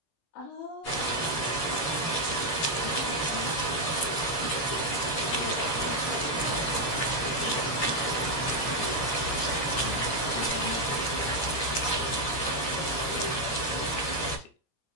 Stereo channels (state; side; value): late; right; 17 ms